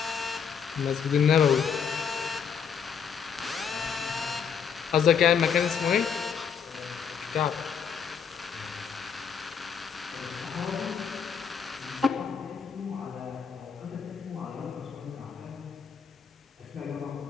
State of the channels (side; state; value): right; quieter; 7.0 dB